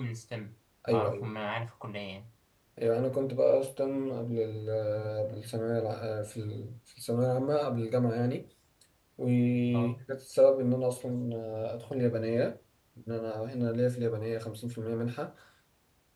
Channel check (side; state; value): both; identical; correlation 1.00